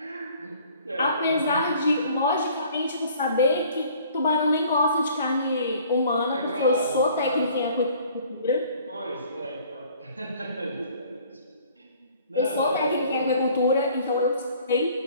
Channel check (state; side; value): inverted; both; correlation -0.54